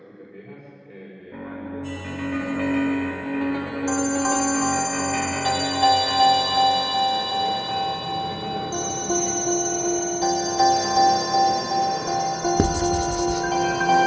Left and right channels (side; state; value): both; identical; correlation 1.00